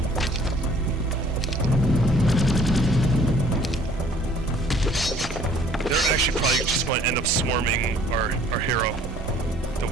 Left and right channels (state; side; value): normal; both; correlation 0.56